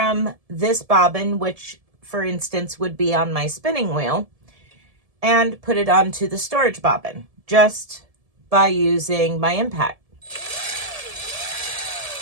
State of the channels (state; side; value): late; left; 1.7 ms